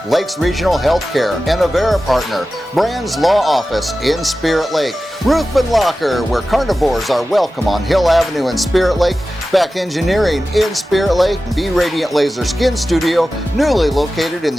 Lakes Regional Healthcare and Avera Partner. Brand's Law Office in Spirit Lake. Ruthven Locker, where carnivores are welcome on Hill Avenue in Spirit Lake. Beck Engineering in Spirit Lake. Be Radiant Laser Skin Studio, newly located in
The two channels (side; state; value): both; normal; correlation 0.94